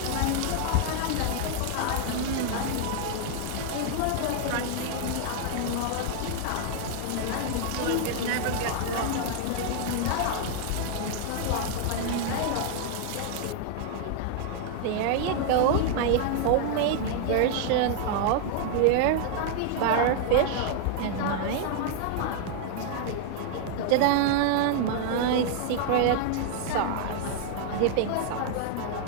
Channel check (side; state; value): both; different; correlation 0.00